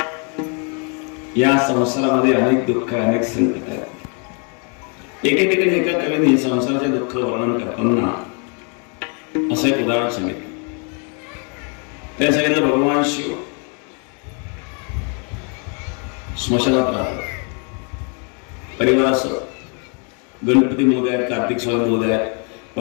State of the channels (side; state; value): right; quieter; 38.0 dB